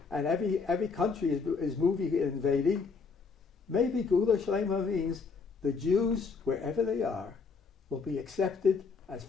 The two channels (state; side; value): quieter; right; 4.9 dB